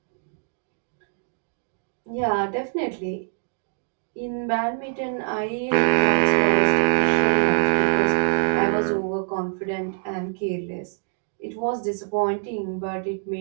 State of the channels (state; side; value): silent; left; 62 dB below the other